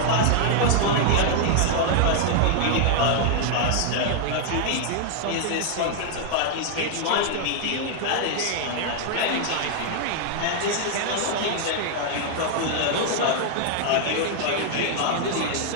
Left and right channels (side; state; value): both; different; correlation 0.00